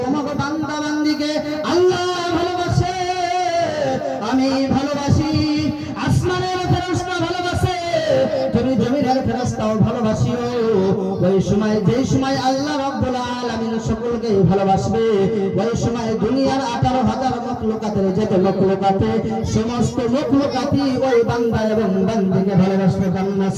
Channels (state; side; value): identical; both; correlation 1.00